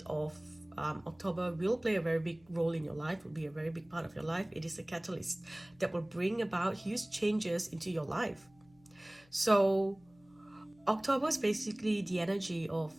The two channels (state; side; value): noise; left; hum, 30 dB below the sound